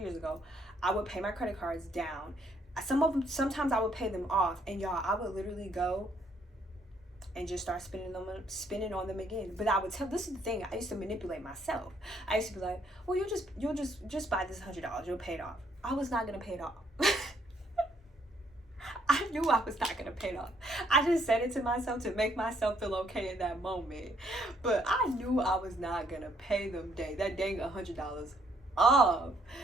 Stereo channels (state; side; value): normal; both; correlation 0.68